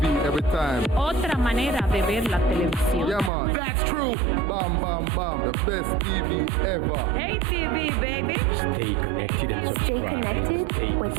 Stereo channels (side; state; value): left; drops out; at 3.3 s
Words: Every time. Otra manera de ver la televisión. Yeah, man. That's true. Bam, bam, bam. The best TV ever. Hey TV, baby. Stay connected and subscribe. Stay connected with